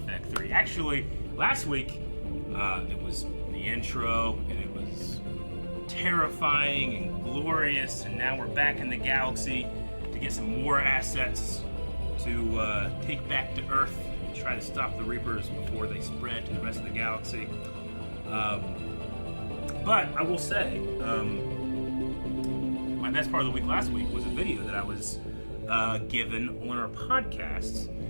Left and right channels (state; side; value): inverted; both; correlation -1.00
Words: 3. Actually, last week, it was the intro, and it was terrifying and glorious, and now we're back in the galaxy to get some more assets to take back to Earth and try to stop the Reapers before they spread to the rest of the galaxy. But I will say, my best part of the week last week was a video that I was given on our podcast